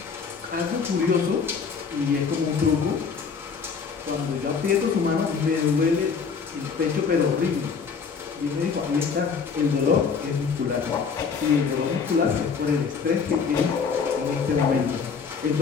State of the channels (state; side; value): quieter; right; 5.7 dB